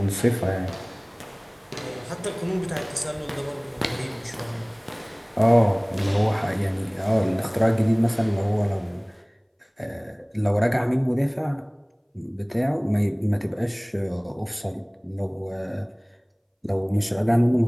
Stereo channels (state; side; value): identical; both; correlation 1.00